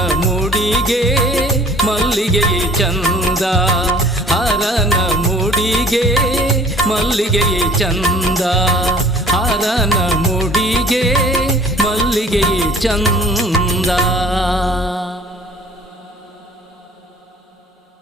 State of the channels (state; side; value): normal; both; correlation 0.51